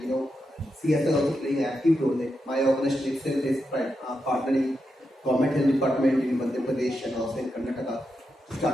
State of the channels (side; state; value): both; normal; correlation 0.86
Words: CSR also playing an active role. Like my organization itself is partnering government health department in Madhya Pradesh and also in Karnataka to